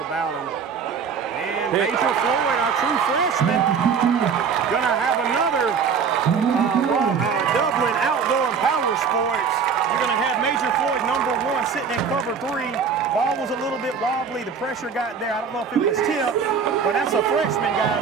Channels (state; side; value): quieter; left; 6.2 dB